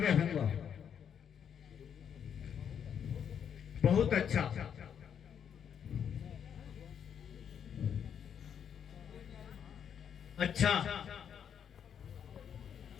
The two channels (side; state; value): right; quieter; 8.2 dB